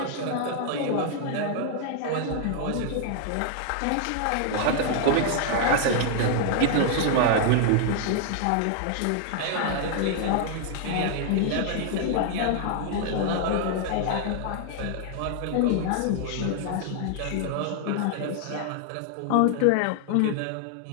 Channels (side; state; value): both; different; correlation 0.00